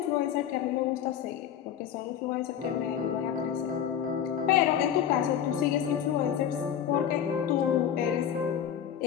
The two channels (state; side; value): quieter; right; 9.4 dB